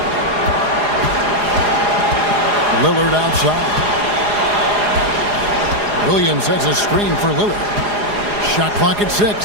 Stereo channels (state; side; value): late; left; 4.9 ms